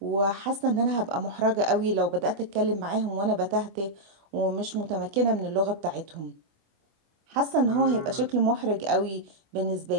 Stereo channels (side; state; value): left; late; 25 ms